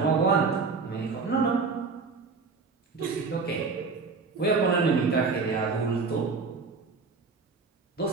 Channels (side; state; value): left; quieter; 4.5 dB